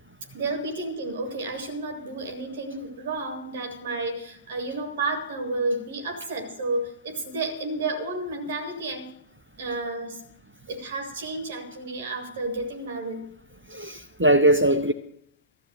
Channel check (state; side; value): inverted; both; correlation -0.38